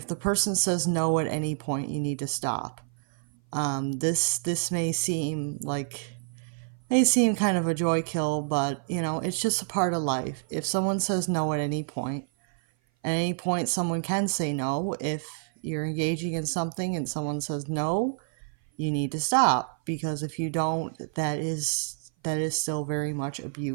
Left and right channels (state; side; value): silent; left; 57 dB below the other